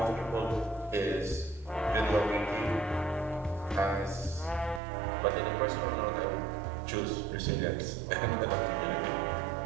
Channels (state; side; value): drops out; left; at 4.8 s